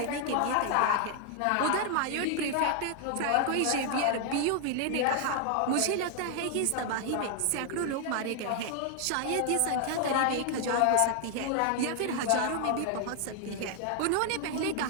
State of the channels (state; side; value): different; both; correlation 0.00